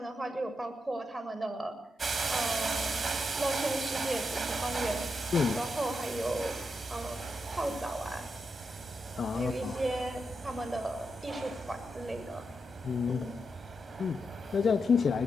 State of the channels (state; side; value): normal; both; correlation 0.85